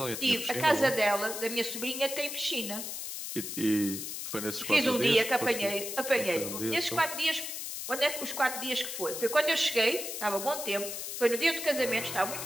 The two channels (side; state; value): left; noise; hiss, 6 dB below the sound